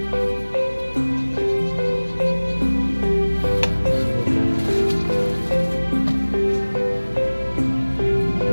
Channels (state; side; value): inverted; both; correlation -1.00